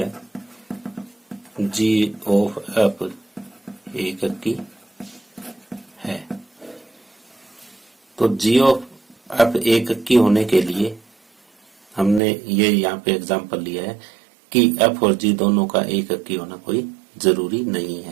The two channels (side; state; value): left; drops out; at 12.2 s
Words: जी ऑफ एफ एकक की है। तो जी ऑफ एफ एकक की होने के लिए हमने ये यहाँ पे एग्जांपल लिया है कि एफ और जी दोनों का एकक की होना कोई जरूरी नहीं